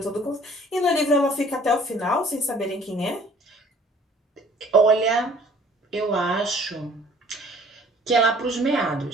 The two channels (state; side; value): normal; both; correlation 0.54